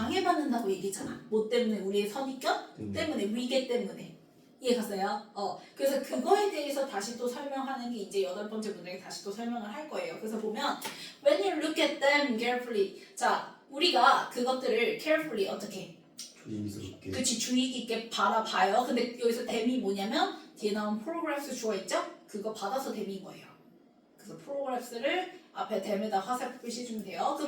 얘기했잖아. 뭐 때문에? 우리의 선입견? 때문에. 위계 때문에. 이해갔어요? 그래서 그거에 대해서 다시 또 설명하는 게 이제 8번째 문장에 다시 또 설명을 할 거예요. 그래서 보면 when you look at them carefully 자, 우리가 그것들을 carefully 어떻게? 조심스럽게. 그치, 주의 깊게 바라봐요. 근데 여기서 them이 뭐냐면 뒤에 나온 프로그래프스 주어 있죠? 그거 받아서 them인 거예요. 그래서 프로그래프스를 앞에 them에다 화살표 표시해주면 돼요.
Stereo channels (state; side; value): identical; both; correlation 1.00